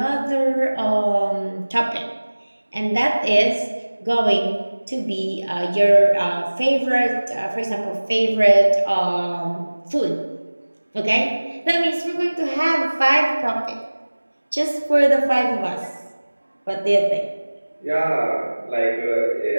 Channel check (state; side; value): inverted; both; correlation -1.00